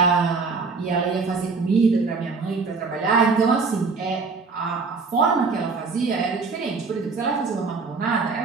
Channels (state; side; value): quieter; left; 4.5 dB